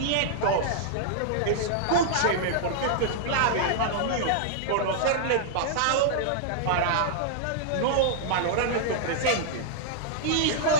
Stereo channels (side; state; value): both; different; correlation -0.01